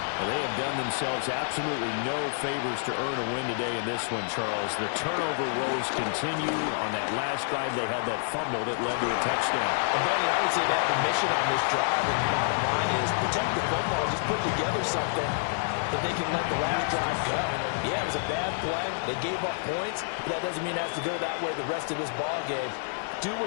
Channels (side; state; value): right; silent; digital silence